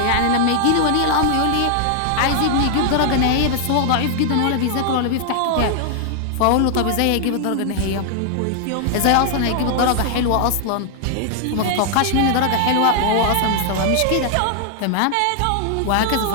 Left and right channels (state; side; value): different; both; correlation 0.00